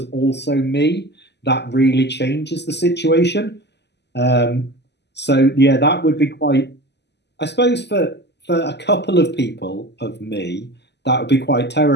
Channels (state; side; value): late; right; 0.50 ms